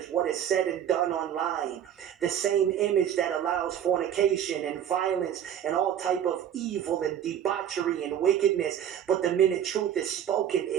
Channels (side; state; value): left; quieter; 9.7 dB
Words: what is said and done online. The same image that allows fornication and violence and all type of evil and debauchery and wickedness. But the minute truth is spoken,